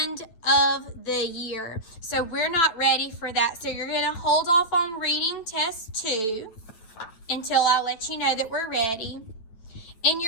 of the year. So we're not ready for that. So you're going to hold off on reading test 2 until I let you know that we're ready. And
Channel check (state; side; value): late; right; 9.1 ms